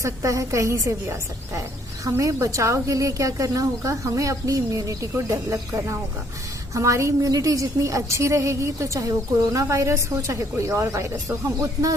है, कहीं से भी आ सकता है। हमें बचाव के लिए क्या करना होगा? हमें अपनी इम्यूनिटी को डेवलप करना होगा। हमारी इम्यूनिटी जितनी अच्छी रहेगी तो चाहे वो कोरोना वायरस हो, चाहे कोई और वायरस हो, हम उतना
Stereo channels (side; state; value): both; normal; correlation 0.65